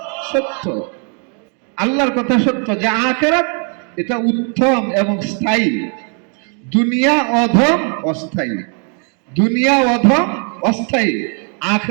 সত্য। আল্লাহর কথা সত্য যে আখিরাত এটা উত্তম এবং স্থায়ী, দুনিয়া অধম অস্থায়ী। দুনিয়া অধম অস্থায়ী,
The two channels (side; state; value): left; quieter; 39.7 dB